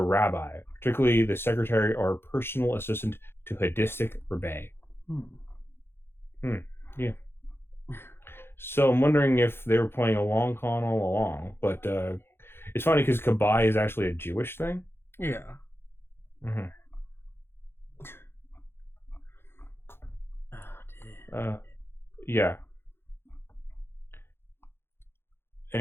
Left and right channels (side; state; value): right; late; 0.11 ms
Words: particularly the secretary or personal assistant to Hadistic rabbi. Yeah. So I'm wondering if they were playing a long con all along, but it's funny because Gabai is actually a Jewish thing. Yeah. Mm-hmm. Oh dear. Yeah.